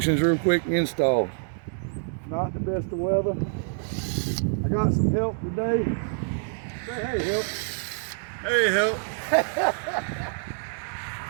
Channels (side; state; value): left; silent; 61 dB below the other